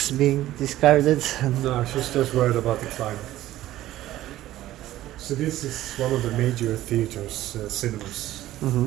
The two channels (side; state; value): left; quieter; 14.6 dB